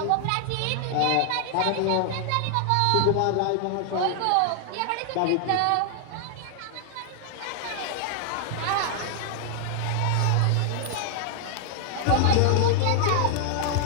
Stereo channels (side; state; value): both; different; correlation 0.00